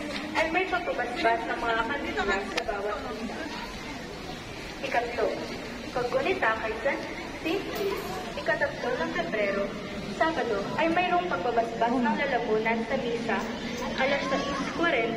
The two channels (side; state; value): both; identical; correlation 1.00